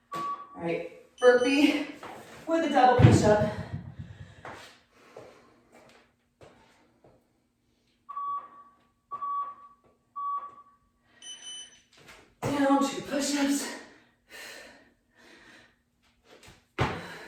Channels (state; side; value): identical; both; correlation 1.00